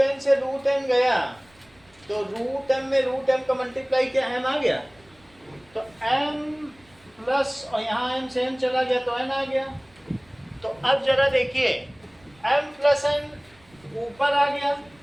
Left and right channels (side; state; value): right; noise; rumble, 30 dB below the sound